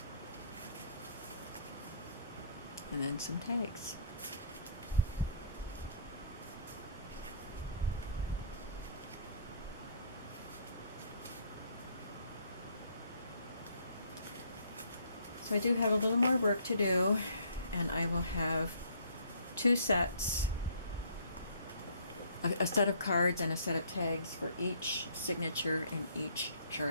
And then some tags. So I do have a little more work to do, and I will have 2 sets, a set of cards and a set of tags for each signature in each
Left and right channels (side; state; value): both; inverted; correlation -0.58